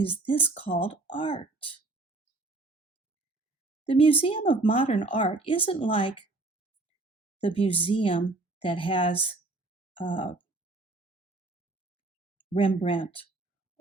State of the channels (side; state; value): left; quieter; 3.1 dB